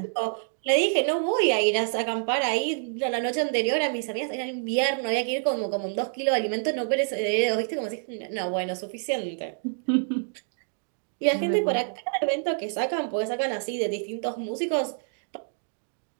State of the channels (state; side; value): silent; left; digital silence